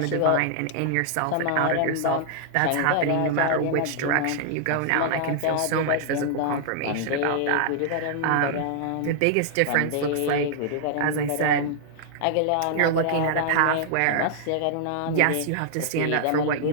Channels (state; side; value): different; both; correlation -0.01